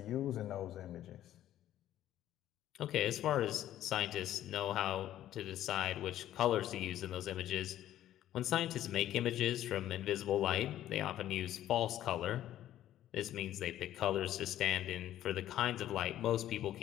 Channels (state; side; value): quieter; right; 12.5 dB